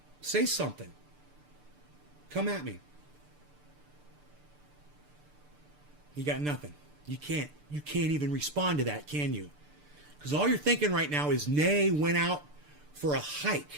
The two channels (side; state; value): left; late; 6.8 ms